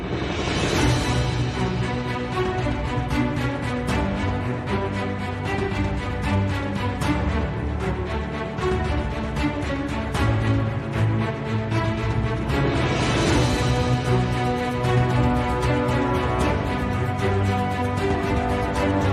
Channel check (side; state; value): both; identical; correlation 1.00